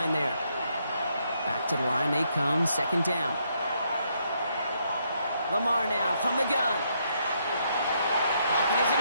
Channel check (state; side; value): inverted; both; correlation -0.74